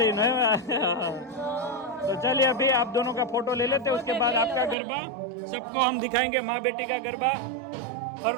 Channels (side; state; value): left; drops out; at 4.8 s